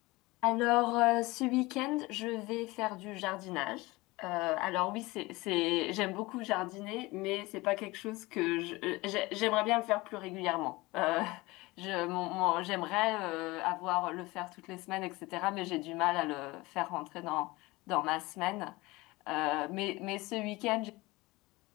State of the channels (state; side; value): quieter; right; 21.6 dB